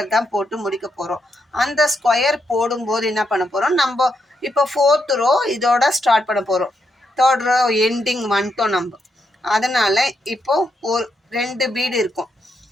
தான் போட்டு முடிக்க போகிறோம். அந்த ஸ்கொயர் போடும்போது என்ன பண்ண போகிறோம், நம்ம இப்போ 4th ரோ இதோட ஸ்டார்ட் பண்ண போகிறோம். 3rd ரோ எண்டிங் வந்துட்டோம் நம்ம. அதனால் இப்போ ஒரு 2 பீடு இருக்கும்.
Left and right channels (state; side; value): normal; both; correlation 0.81